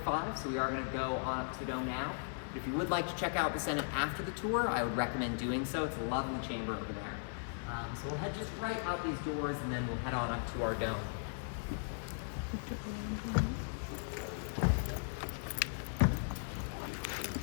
so we are gonna go on up to the dome now. If you would like to check out the Senate after the tour, I would recommend doing so. It's a lovely chamber over there. So we'll head just right out these doors, and then we'll head on up to our dome.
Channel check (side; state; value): right; silent; digital silence